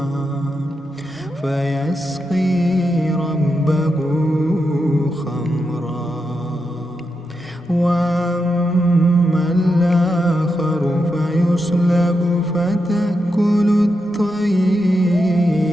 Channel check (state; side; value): normal; both; correlation 0.86